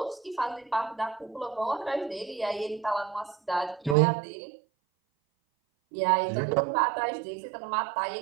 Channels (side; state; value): left; drops out; at 4.0 s